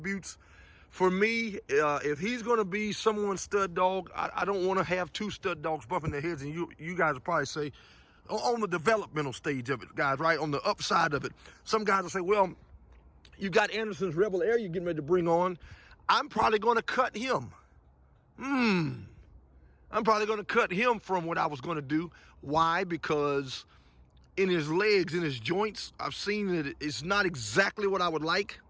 For me, if he's going to be someone's stud dog, I don't want to have two stud dogs bumping their heads. And you guys will probably say, on the developmental stage of it, guys, right? On the upside of it. Some guys will say, well, you got Anderson's Rebel Heir you're getting ready to bring on. I'm probably going to cut him. I'm probably going to cut him from what I was going to do. Why? Because in his legs, in his joints, I've seen that it's not exactly what I would like.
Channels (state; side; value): identical; both; correlation 1.00